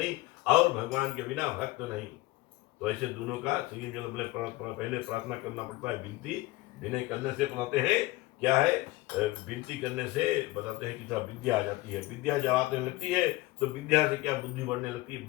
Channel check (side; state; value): right; quieter; 19.5 dB